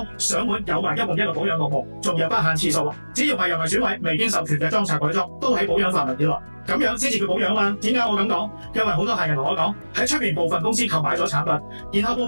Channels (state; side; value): inverted; both; correlation -1.00